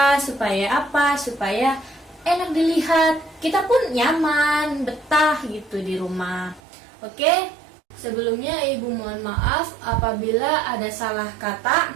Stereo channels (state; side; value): drops out; left; at 6.6 s